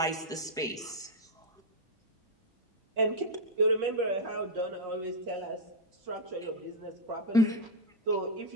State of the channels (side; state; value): both; normal; correlation 0.00